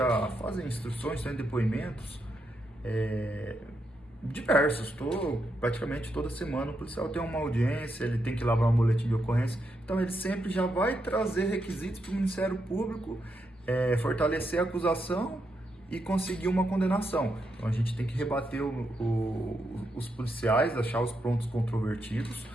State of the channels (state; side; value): normal; both; correlation 0.82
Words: fazem instruções, têm depoimentos diversos. Praticamente toda semana o policial tem uma audiência, ele tem que elaborar um boletim de ocorrência. Então, ele sempre já vai trazer requisitos para o Ministério Público fortalecer a acusação e conseguir uma condenação. Então a gente tem que rebater os policiais, achar os pontos controvertidos,